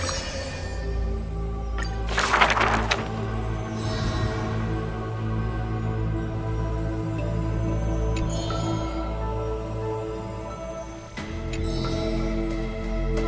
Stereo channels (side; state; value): both; identical; correlation 1.00